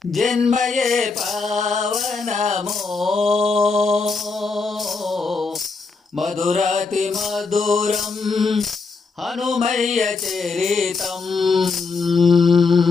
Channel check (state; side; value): quieter; right; 4.3 dB